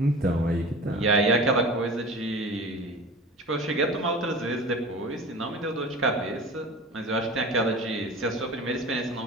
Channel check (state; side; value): normal; both; correlation 0.37